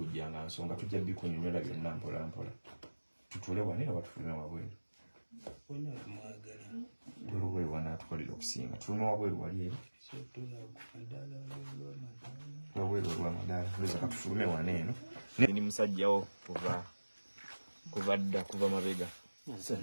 nga nsonga tujja bikunyonyola byonna mpola mpola tutule wano era batufulume wabweru olubweru wanatukolera okusinga tulume wabweru wali eri wabweru olwamadaala lweza katufulume wano eno ni musajjawo kuva mabega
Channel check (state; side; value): inverted; both; correlation -1.00